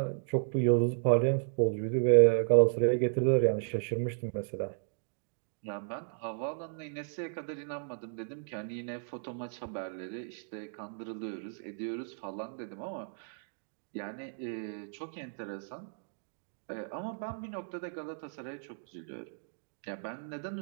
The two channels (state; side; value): silent; left; digital silence